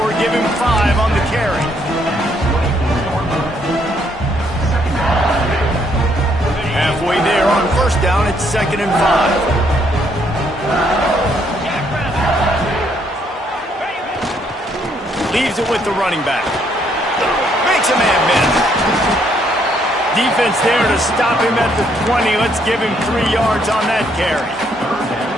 give him 5 on the carry. Halfway there on 1st down, it's 2nd and 5. Leaves it with the running back. Makes a man miss. Defense there to stop him at the 20. Let's give him 3 yards on that carry.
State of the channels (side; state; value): both; normal; correlation 0.70